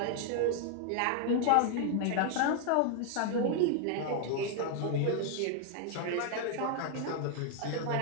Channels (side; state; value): both; different; correlation 0.00